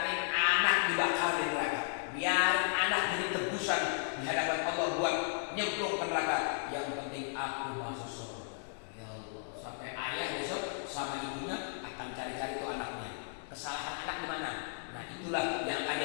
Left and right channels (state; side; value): silent; right; digital silence